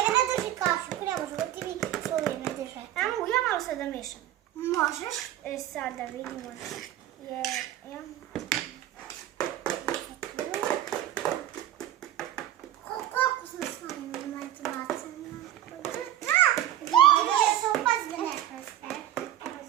drži kašu, ne može da ti mi svoje ne drže. Ja malo sad da mešam. Možeš? Sad da vidimo. Koliko sam s vama imati bacana? Da se upazbe ne preste.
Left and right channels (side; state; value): left; quieter; 12.7 dB